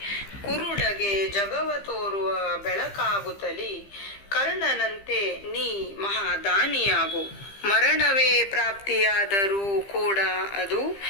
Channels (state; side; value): late; right; 15 ms